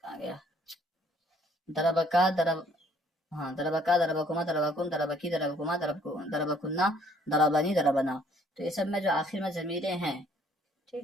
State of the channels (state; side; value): normal; both; correlation 0.62